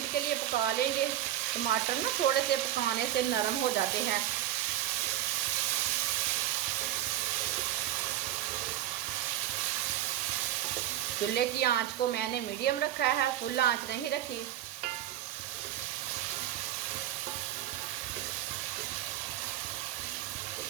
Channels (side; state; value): left; quieter; 12.8 dB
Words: के लिए पका लेंगे। टमाटर ना थोड़े से पकाने से नरम हो जाते हैं। चूल्हे की आंच को मैंने मीडियम रखा है, फुल आंच नहीं रखी।